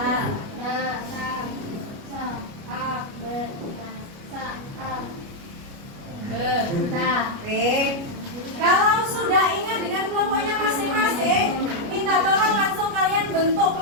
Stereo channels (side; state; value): left; late; 29 ms